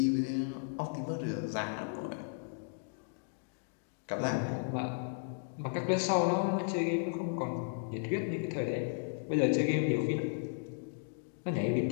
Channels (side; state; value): right; silent; digital silence